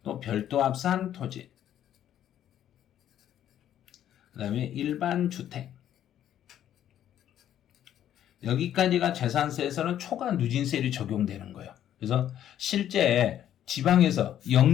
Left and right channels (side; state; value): right; quieter; 11.0 dB